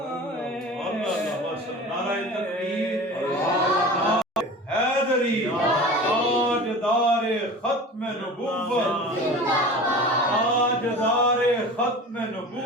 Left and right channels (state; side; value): normal; both; correlation 0.36